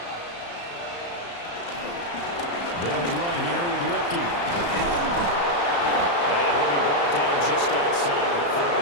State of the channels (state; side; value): late; right; 35 ms